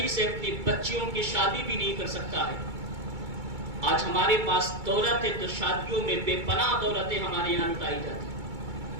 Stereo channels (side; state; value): left; late; 2.2 ms